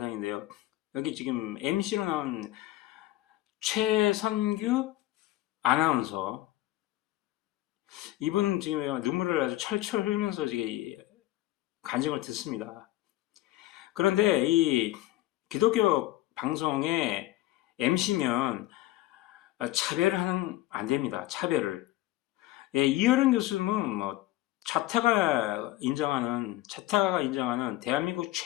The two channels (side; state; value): right; quieter; 16.2 dB